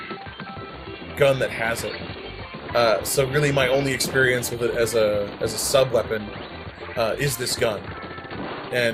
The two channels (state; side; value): identical; both; correlation 1.00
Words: gun that has it. So really my only experience with it as a sub-weapon is this gun.